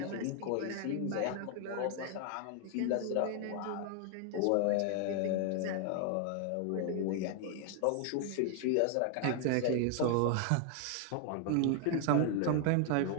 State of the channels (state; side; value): different; both; correlation 0.00